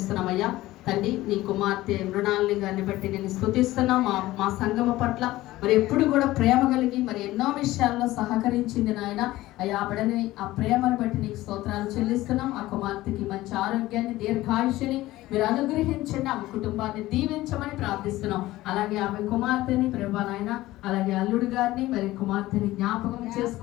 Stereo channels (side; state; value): right; quieter; 17.0 dB